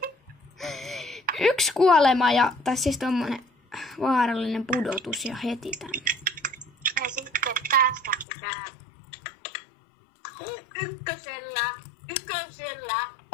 1 kuolema tai siis tommonen vaarallinen pudotus ja heti tänne. Ja sitten tästä pitää ykkösellä.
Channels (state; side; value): drops out; right; at 8.2 s